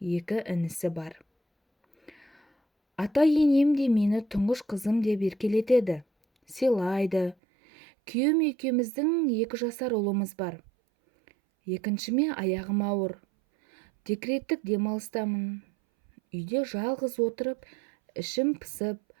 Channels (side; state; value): left; drops out; at 7.4 s